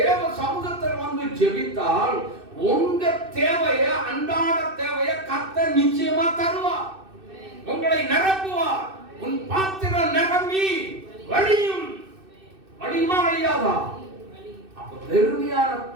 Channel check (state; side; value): late; left; 2.6 ms